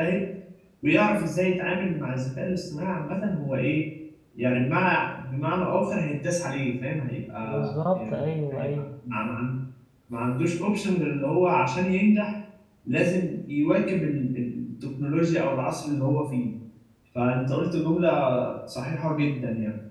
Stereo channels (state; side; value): identical; both; correlation 1.00